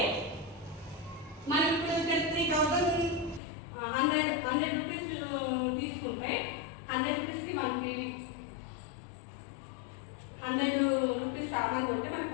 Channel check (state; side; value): drops out; right; at 3.4 s